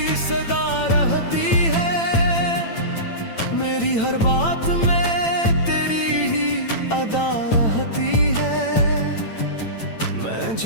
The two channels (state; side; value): late; right; 8.9 ms